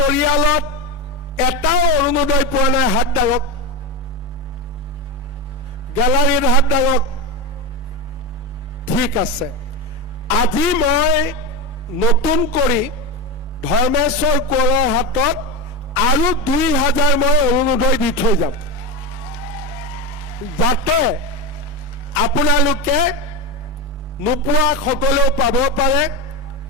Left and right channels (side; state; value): both; normal; correlation 0.17